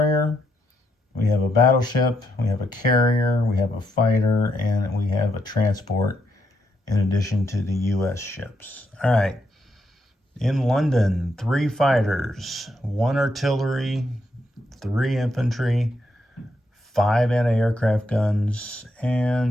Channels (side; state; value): both; normal; correlation 0.78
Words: We have a battleship. We have a carrier. We have a fighter. And we have a transport in addition to the U.S. ships. All right. In London, 3 fighters, 1 artillery, 3 infantry, 5 anti-aircraft guns,